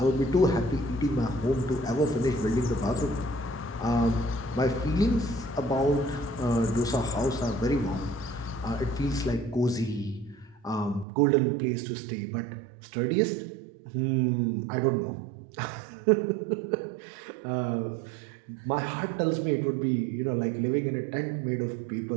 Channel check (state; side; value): drops out; left; at 11.1 s